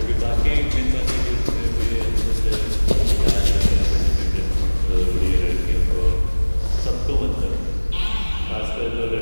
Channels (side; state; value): both; inverted; correlation -1.00